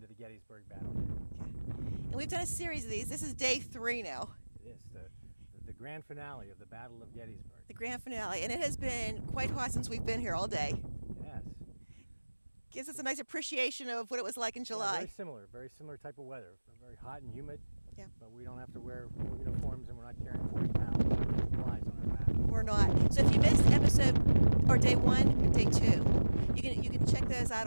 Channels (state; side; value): inverted; both; correlation -1.00